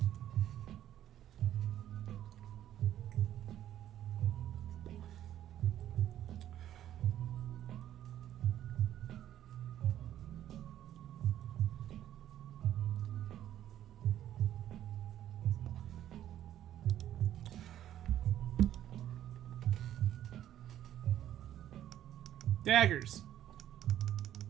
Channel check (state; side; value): quieter; left; 11.7 dB